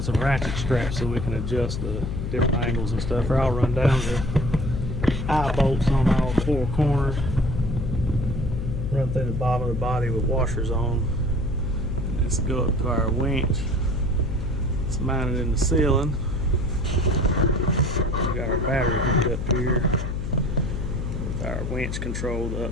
some ratchet straps so we can adjust the different angles and stuff. Or I'll run down the eye bolts on all four corners. Run through the bottom of the body with washers on. And let's go up to our winch. It's mounted in the ceiling. We got our battery hooked up here with our winch controlled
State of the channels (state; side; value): noise; left; hum, 3 dB below the sound